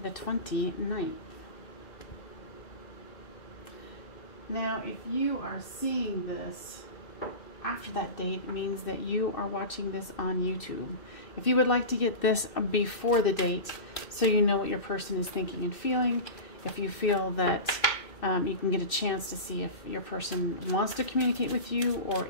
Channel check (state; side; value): late; right; 2.6 ms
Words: the 29th. Now, if you are seeing this after that date, it means that you are watching this on YouTube. If you would like to get this before the date so you know what your person is thinking and feeling, if you feel that you can get a chance to see if your person wants to communicate with you or